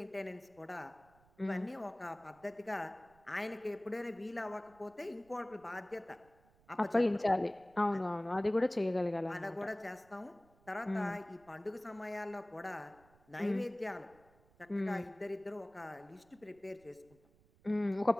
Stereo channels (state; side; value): noise; right; rumble, 29 dB below the sound